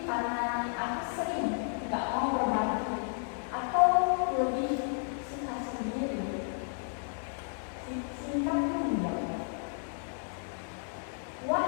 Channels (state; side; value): silent; right; 56 dB below the other